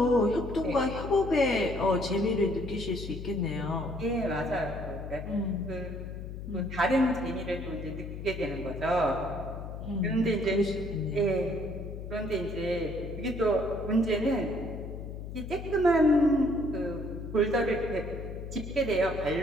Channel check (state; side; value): noise; left; hum, 8 dB below the sound